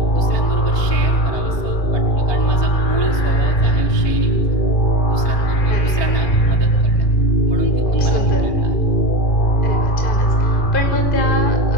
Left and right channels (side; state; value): right; late; 1.3 ms